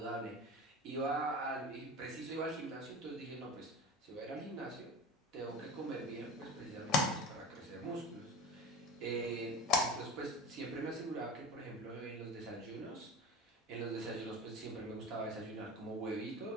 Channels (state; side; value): normal; both; correlation 0.30